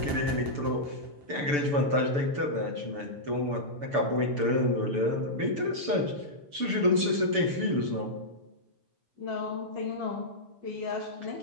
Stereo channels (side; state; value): left; late; 6.9 ms